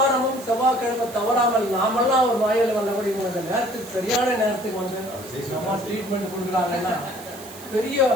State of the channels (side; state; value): right; noise; hiss, 17 dB below the sound